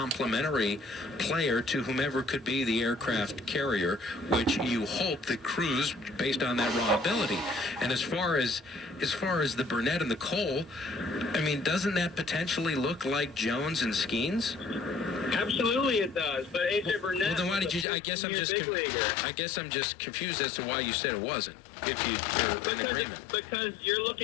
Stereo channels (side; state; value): right; drops out; at 17.9 s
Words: player to whomever could be the aircraft carrier, which you hope that Cruz, based on that raw ability. And as far as the Burnett and the Cole, I mean, doesn't that potentially look like Jones and Skeens? Absolutely, it does. But A.J. Burnett. Well, then why did you? I guess I'm just confused as to why you said it wasn't. If you're in agreement. Because you're